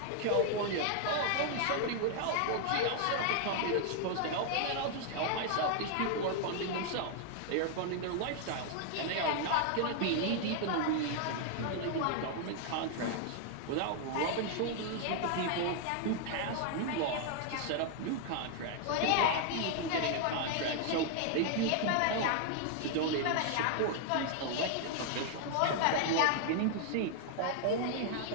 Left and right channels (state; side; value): different; both; correlation 0.00